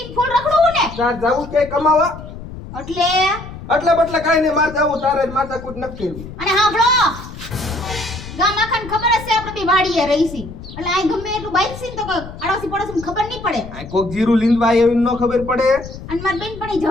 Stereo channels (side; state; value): left; noise; rumble, 13 dB below the sound